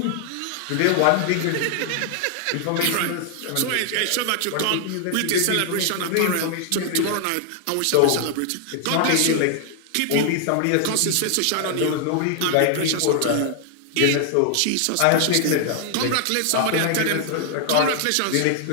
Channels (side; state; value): both; different; correlation 0.00